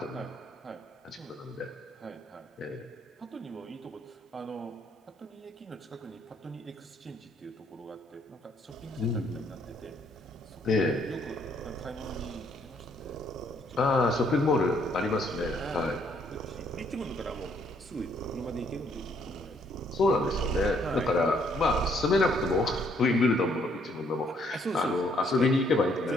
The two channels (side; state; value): both; normal; correlation 0.68